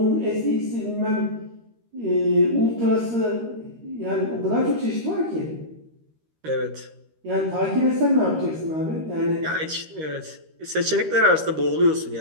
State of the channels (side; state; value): left; late; 13 ms